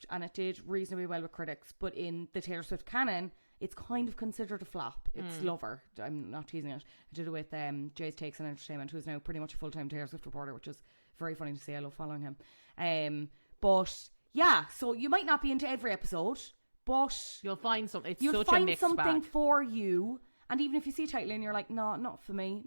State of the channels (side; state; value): both; inverted; correlation -1.00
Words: and it did reasonably well with critics. But in the Taylor Swift canon, it's kind of considered a flop. It's Lover. I'm not teasing it. I did it with Jay's Takes on Entertainment, who's now pretty much a full-time Taylor Swift reporter, which is very funny to see. I love following him. But yeah, so you might not be into every episode, but you'll find something. You'll find something for you. And even if you see a title and you're like, no, not for me,